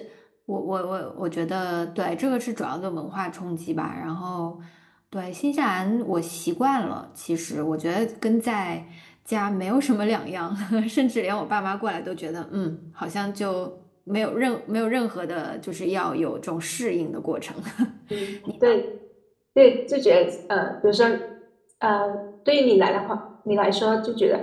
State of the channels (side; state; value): both; identical; correlation 1.00